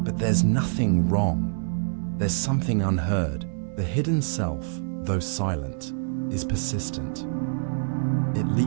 But there's nothing wrong. There's something unheard. The hidden self, though silent, is persistent. It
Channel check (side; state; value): left; silent; 61 dB below the other